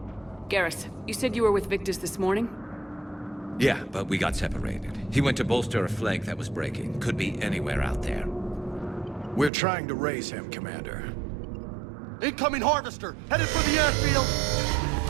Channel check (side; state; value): left; drops out; at 9.5 s